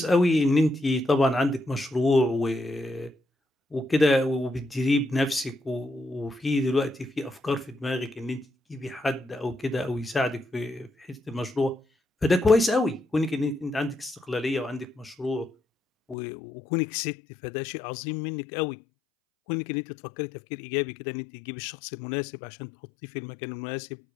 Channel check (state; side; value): drops out; right; at 16.2 s